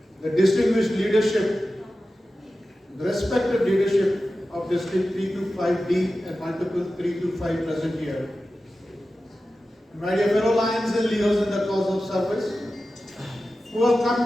the distinguished leadership, the respected leadership of District 325D and multiple 325 present here. My dear fellow Lions and Leos in the cause of service, who have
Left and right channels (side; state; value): both; normal; correlation 0.94